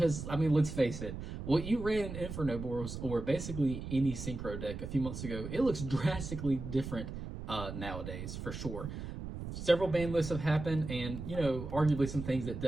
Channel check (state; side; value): noise; right; rumble, 8 dB below the sound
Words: I mean, let's face it, what you ran in Infernoble or basically any synchro deck a few months ago, it looks drastically different nowadays, for sure. Several ban lists have happened, and, you know, arguably some things that